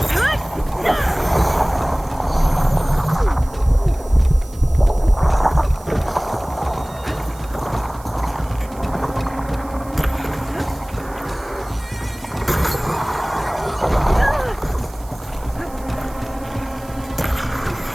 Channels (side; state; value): right; noise; hiss, 22 dB below the sound